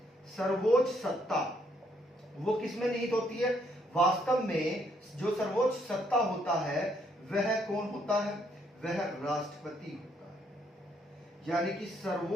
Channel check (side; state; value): both; normal; correlation 0.71